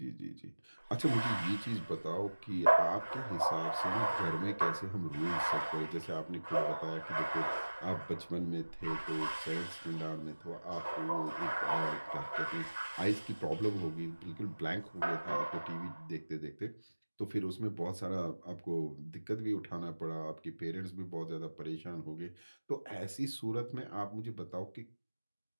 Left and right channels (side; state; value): both; inverted; correlation -1.00